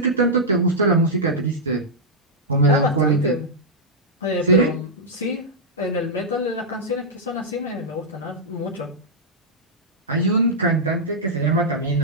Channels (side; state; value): both; normal; correlation -0.08